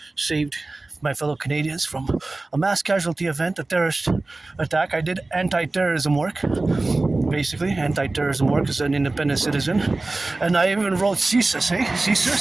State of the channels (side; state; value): left; quieter; 3.1 dB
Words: saved my fellow Canadians from a mass casualty event, a terrorist attack. I did anti-terrorism work, basically anti-terrorism work as an independent citizen, and I even wrote CSIS,